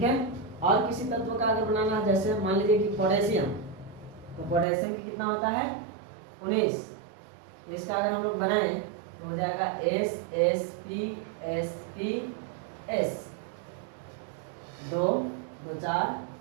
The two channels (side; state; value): left; drops out; at 4.7 s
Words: है। और किसी तत्व का अगर बनाना है, जैसे मान लीजिए कि पोटेशियम, तो पोटेशियम की कितना होता है 19, इसका अगर हम लोग बनाएं तो हो जाएगा SsPsPs, 2 2 4